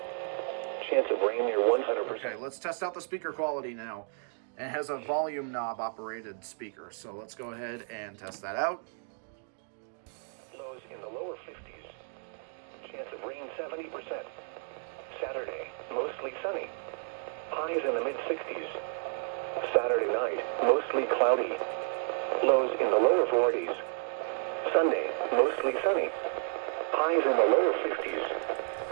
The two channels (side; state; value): left; silent; 56 dB below the other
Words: Chance of rain near 100%. Okay, let's test out the speaker quality now. It has a volume knob operated speaker, so let's go ahead and test that out. Lows in the lower 50s. Chance of rain 70%. Saturday, mostly sunny. Highs in the mid 60s. Saturday night, mostly cloudy. Lows in the lower 40s. Sunday, mostly sunny. Highs in the lower